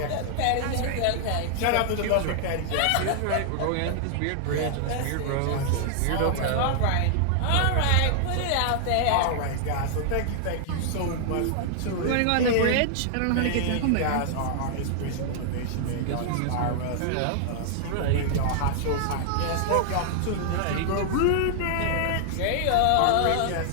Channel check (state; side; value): different; both; correlation -0.01